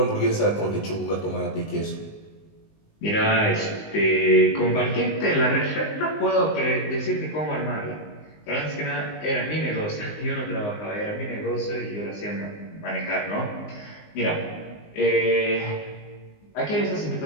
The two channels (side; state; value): right; late; 19 ms